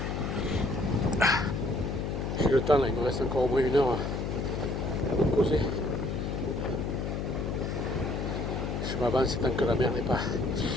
J'ai le temps là, il me reste encore au moins 1 heure à me poser. Je m'avance tant que la mer n'est pas.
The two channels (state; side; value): noise; left; hum, 2 dB below the sound